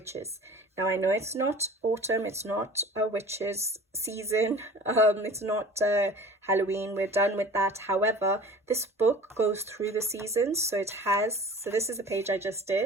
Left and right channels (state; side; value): normal; both; correlation 0.42